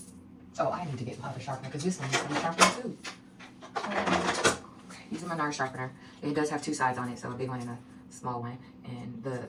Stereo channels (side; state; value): both; identical; correlation 1.00